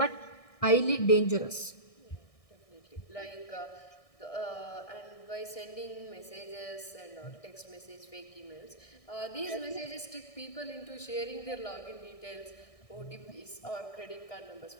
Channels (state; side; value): late; right; 1.6 ms